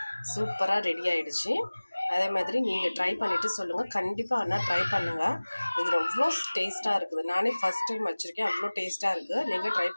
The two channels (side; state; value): both; inverted; correlation -1.00